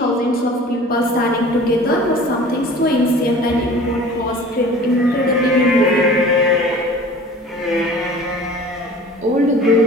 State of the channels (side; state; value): both; normal; correlation 0.44